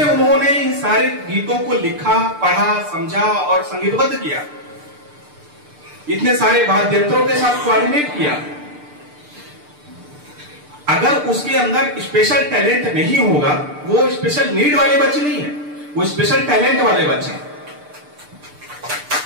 उन्होंने इन सारे गीतों को लिखा, पढ़ा, समझा और संगीतबद्ध किया, इतने सारे वाद्ययंत्रों के साथ कोऑर्डिनेट किया। अगर उसके अंदर स्पेशल टैलेंट नहीं होगा, वो स्पेशल नीड वाले बच्चे नहीं है, वो स्पेशल टैलेंट वाले बच्चे हैं।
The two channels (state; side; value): late; left; 6.8 ms